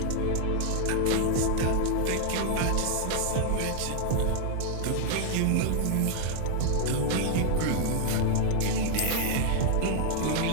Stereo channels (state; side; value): different; both; correlation -0.01